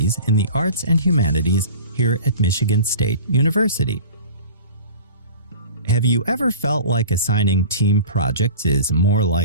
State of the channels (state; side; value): inverted; both; correlation -0.40